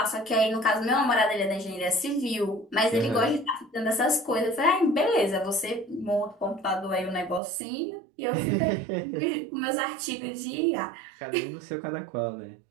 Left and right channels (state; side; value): drops out; left; at 7.4 s